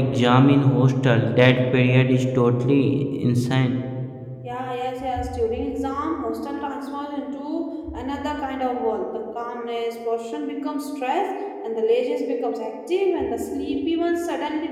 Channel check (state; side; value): identical; both; correlation 1.00